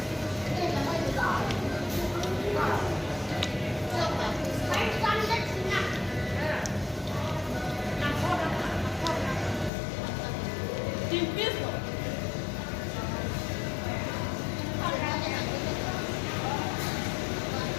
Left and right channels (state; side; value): drops out; right; at 9.7 s